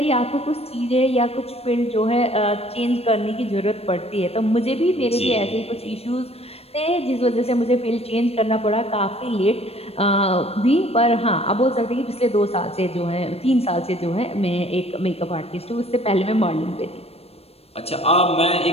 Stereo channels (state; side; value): late; right; 0.29 ms